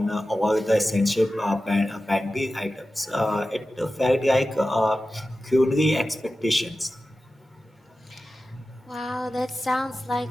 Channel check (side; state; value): both; normal; correlation 0.93